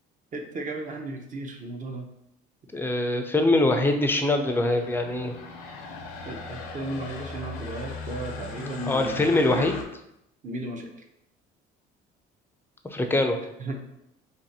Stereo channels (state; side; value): normal; both; correlation 0.64